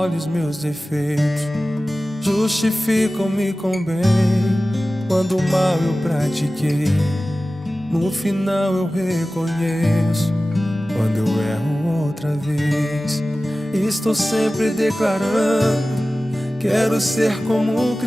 os meus defeitos. Justificam-me com bem quando mal eu pratiquei. No final eu reconheço quando eu erro outra vez. Estou sempre declarando: quero ser como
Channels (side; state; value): both; normal; correlation 0.96